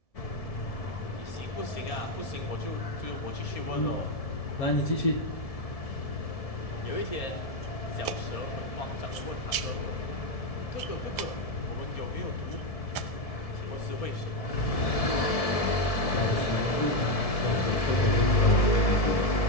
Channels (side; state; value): right; late; 1.7 ms